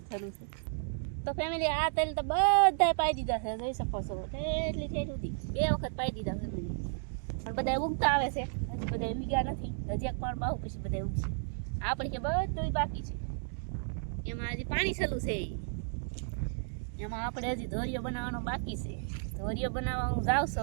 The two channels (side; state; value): left; silent; digital silence